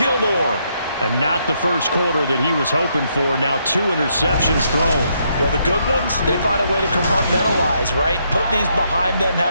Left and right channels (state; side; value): inverted; both; correlation -0.75